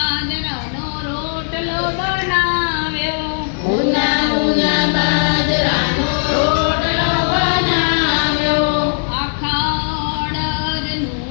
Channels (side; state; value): right; silent; digital silence